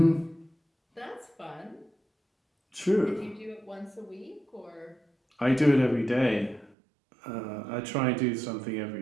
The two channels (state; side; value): drops out; left; at 6.8 s